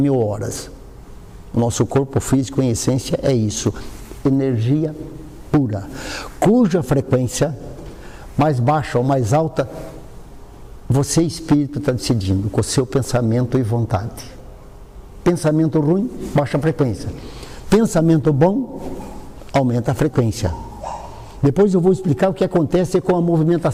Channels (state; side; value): identical; both; correlation 1.00